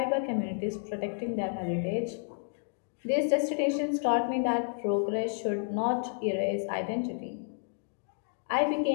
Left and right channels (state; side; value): silent; right; digital silence